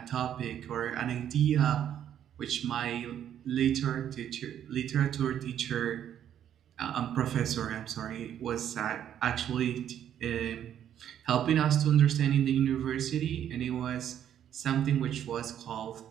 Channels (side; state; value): left; quieter; 10.1 dB